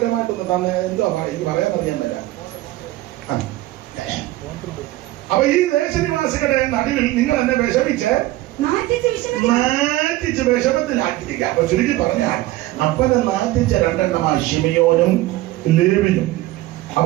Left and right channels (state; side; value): quieter; left; 17.0 dB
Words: തന്നെ എന്തോ എനിക്ക് പറയാൻ അറിയുന്നില്ല. അപ്പൊ ഈ ദേശനിവാസികളുടെ നടുവിൽ നിങ്ങൾ എന്നെ വിഷമിച്ച് നാറ്റിച്ച് വിഷമത്തിലാക്കിയിരിക്കുക. അപ്പൊ ചുരുക്കി പറഞ്ഞാൽ അപ്പനെ നാറ്റിച്ച രണ്ടെണ്ണമാ ശിമിയോനും ലേവിയും.